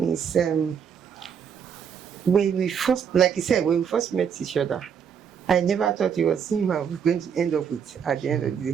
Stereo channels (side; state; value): left; quieter; 7.5 dB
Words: is when we first, like you said, when we first met each other, I never thought it was him I was going to end up with at the end of the